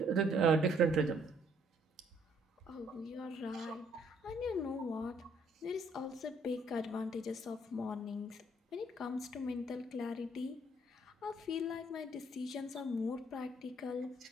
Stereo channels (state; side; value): normal; both; correlation 0.65